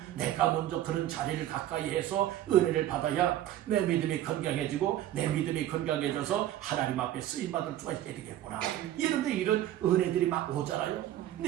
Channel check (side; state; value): left; quieter; 12.8 dB